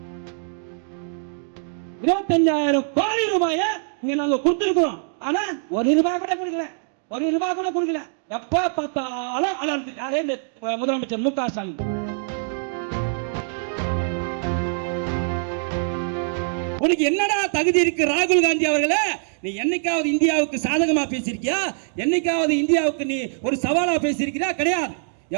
25,000 கோடி ரூபாயை இங்க நாங்க கொடுத்திருக்கிறோம். ஆனா ஒரு ரூபாய் கூட கொடுக்கல, ஒரு ரூபாய் கூட கொடுக்கல. எப்ப பார்த்தாலும் அலர்ந்து யாரே முதலமைச்சர் முக ஸ்டாலின். உனக்கு என்னடா தகுதி இருக்கு ராகுல் காந்தி அவர்களே? நீ என்னைக்காவது இந்தியாவுக்கு சாதகமா பேசியிருக்கியா? என்னைக்காவது இந்தியாவுக்கு நீ ஒரு சவாலா பேசியிருக்கியா? கிடையாது.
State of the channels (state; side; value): silent; left; digital silence